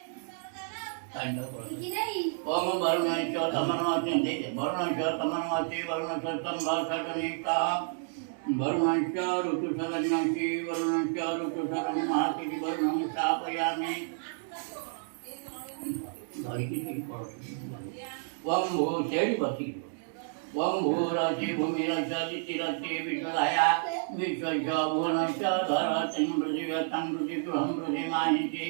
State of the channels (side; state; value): left; silent; digital silence